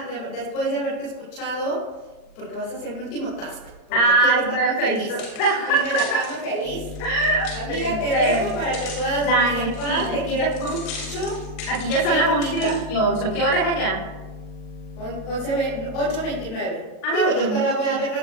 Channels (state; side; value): late; right; 38 ms